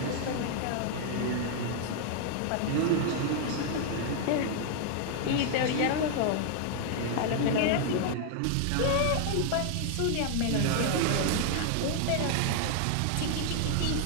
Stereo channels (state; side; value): different; both; correlation 0.00